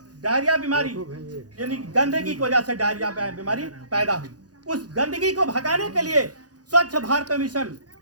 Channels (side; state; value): left; late; 0.68 ms